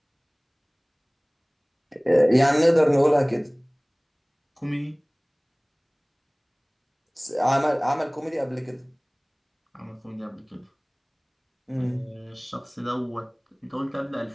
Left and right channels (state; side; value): identical; both; correlation 1.00